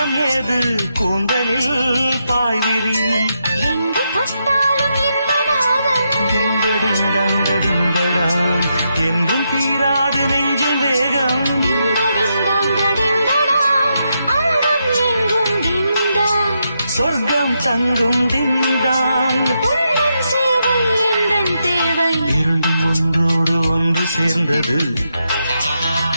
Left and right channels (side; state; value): both; inverted; correlation -0.83